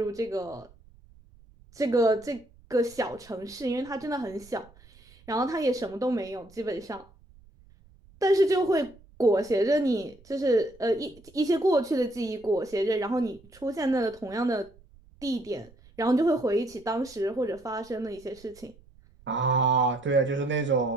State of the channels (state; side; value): noise; right; rumble, 26 dB below the sound